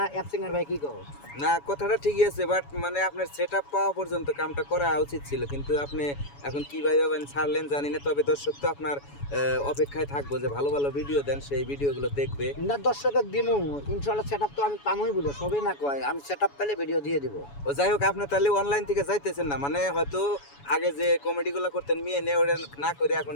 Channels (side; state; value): right; late; 7.1 ms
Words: অ্যাপসিংয়ের ভাই কি কहो? না, কথাটা ঠিকই আছে, বাট মানে আপনার সেট আপ পাওয়া পর্যন্ত কামটা করা উচিত ছিল, কিন্তু আপনি এখন কি ভাবে ছাড়লেন জানি না। তবে দর্শক তো আপনার অপেক্ষায় থাকবো যে ভালো ভালো ভিডিও দেন, সেই ভিডিওগুলো দেখবে। না দর্শকের দিমু ইনশাল্লাহ, সেট আপ তো আমি পামই বলে সবই না কয়, আমি সেট আপ পেলে ভিডিও দিয়ে দিব। ও যাই হোক, আপনি তাহলে অনলাইন থেকে যাইতেছেন না, মানে হয়তো আগে যে কমেডিগুলো করতেন মেয়ে নিয়ে ওটা না করে এখন